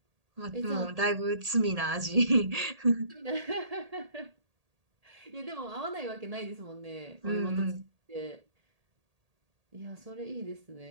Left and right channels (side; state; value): left; late; 1.8 ms